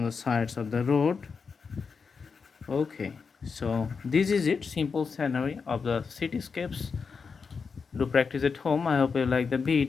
the sides of the road. Okay, so this is it, simple scenery of the cityscapes. Do practice at home. I hope you like the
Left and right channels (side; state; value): right; quieter; 5.4 dB